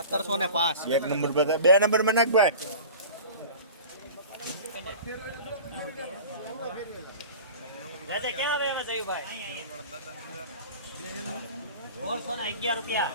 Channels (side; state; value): both; inverted; correlation -0.38